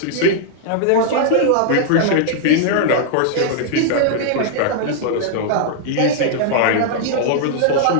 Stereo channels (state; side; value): different; both; correlation -0.01